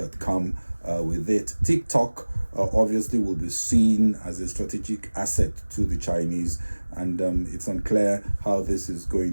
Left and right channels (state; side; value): inverted; both; correlation -1.00